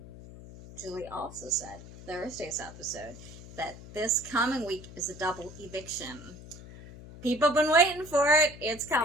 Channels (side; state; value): left; noise; hum, 16 dB below the sound